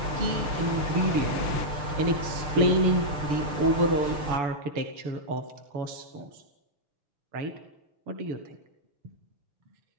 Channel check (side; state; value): left; late; 6.6 ms